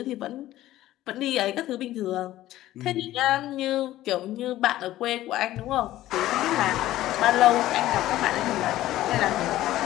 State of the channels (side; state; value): right; quieter; 14.8 dB